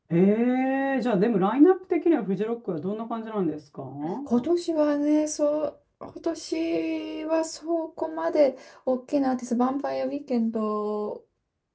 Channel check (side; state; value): both; identical; correlation 1.00